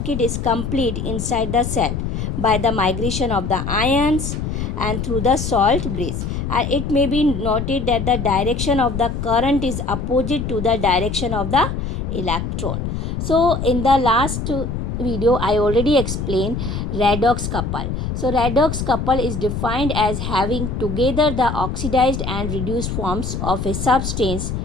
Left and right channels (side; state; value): left; noise; rumble, 3 dB below the sound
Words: is complete inside the cell by the migration of the ions and through the salt bridge. And it may be noted that the direction of the current is opposite to the direction of the electron. So in the last video I already explained redox couple. So redox couple is defined as having together the oxidized and reduced forms of a substance